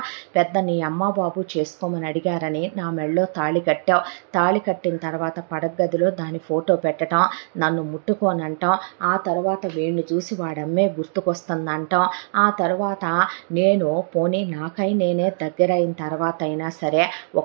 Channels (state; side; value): silent; left; digital silence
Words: పెద్ద నీ అమ్మ బాబు చేసుకోమని అడిగారని నా మెళ్ళో తాళి కట్టావు. తాళి కట్టిన తర్వాత పడగదిలో దాని ఫోటో పెట్టడం, నన్ను ముట్టుకోనంటాం. ఆ తర్వాత వీడిని చూసి వాడమ్మే గుర్తుకొస్తుందంటాం. ఆ తర్వాత నేను పోనీ నాకై నేనే దగ్గరైన తర్వాత అయినా సరే